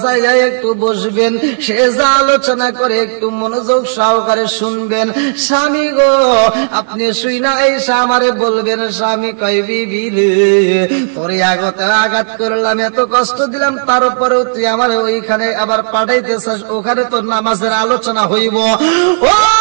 জায়গায় একটু বসবেন, সে যা আলোচনা করে একটু মনোযোগ সহকারে শুনবেন। স্বামী গো আপনি শুইনা এসে আমারে বলবেন, স্বামী কয় বিবি রে তোরে আগতে আঘাত করলাম, এত কষ্ট দিলাম, তারপরেও তুই আমার ওইখানে আবার পাঠাইতেছিস, ওখানে তোর নামাজের আলোচনা হইব। ও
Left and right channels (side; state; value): left; silent; digital silence